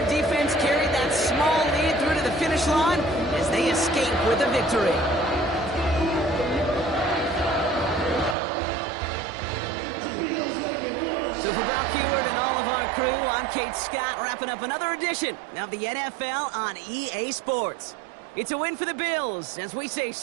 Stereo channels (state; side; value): drops out; left; at 8.3 s